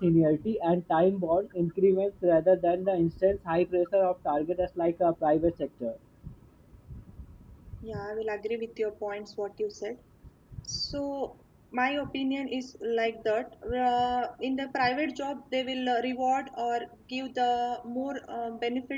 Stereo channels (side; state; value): both; identical; correlation 1.00